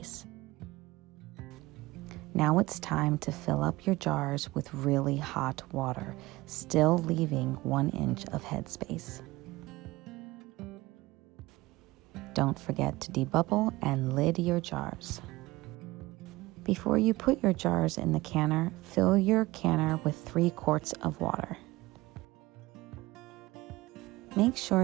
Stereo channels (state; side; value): quieter; left; 19.8 dB